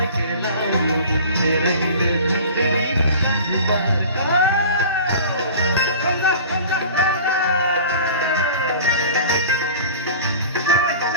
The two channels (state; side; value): inverted; both; correlation -0.40